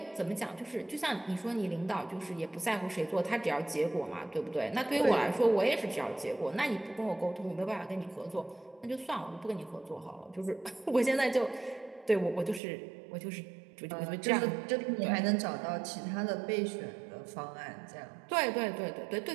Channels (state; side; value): drops out; left; at 12.6 s